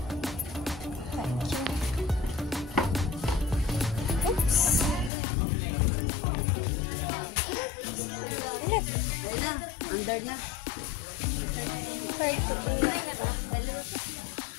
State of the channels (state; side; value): drops out; right; at 5.1 s